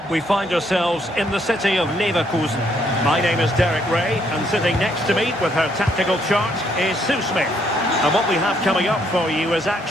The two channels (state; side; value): normal; both; correlation 0.70